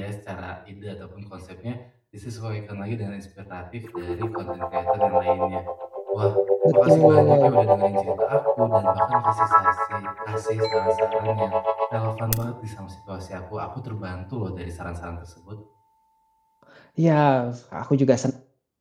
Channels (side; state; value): both; identical; correlation 1.00